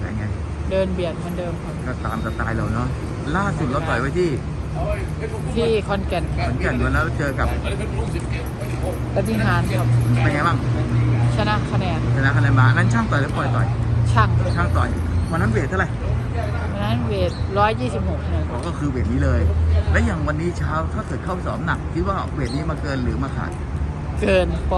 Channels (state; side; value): identical; both; correlation 1.00